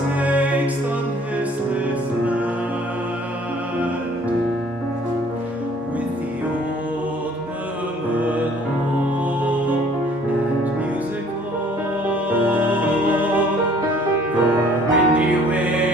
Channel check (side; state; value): both; normal; correlation 0.56